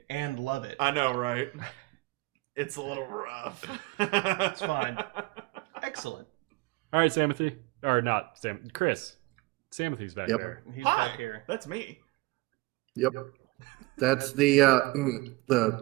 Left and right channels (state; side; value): quieter; left; 22.6 dB